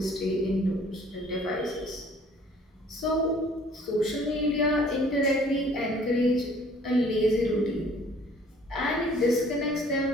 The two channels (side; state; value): both; normal; correlation 0.56